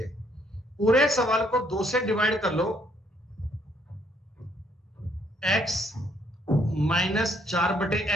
पूरे सवाल को 2 से डिवाइड कर लो। x माइनस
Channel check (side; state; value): both; normal; correlation 0.68